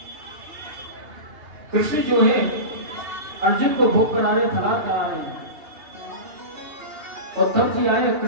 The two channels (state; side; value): late; left; 2.8 ms